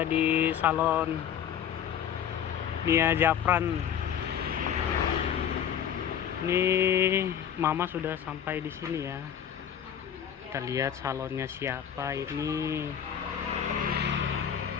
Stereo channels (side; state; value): right; quieter; 9.1 dB